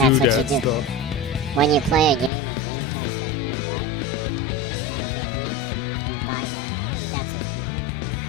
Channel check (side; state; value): right; drops out; at 2.3 s